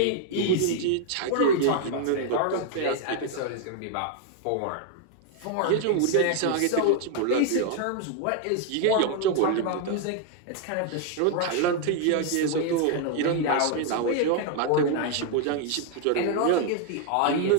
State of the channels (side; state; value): both; different; correlation 0.00